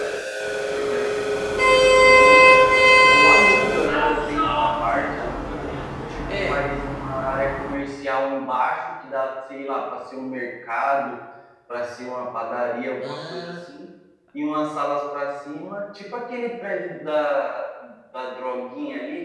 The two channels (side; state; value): both; identical; correlation 1.00